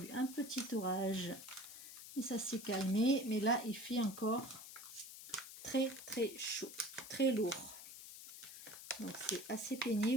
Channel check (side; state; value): left; noise; hiss, 13 dB below the sound